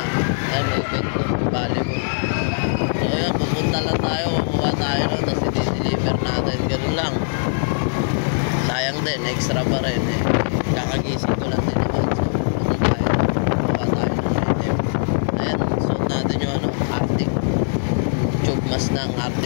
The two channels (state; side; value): silent; right; digital silence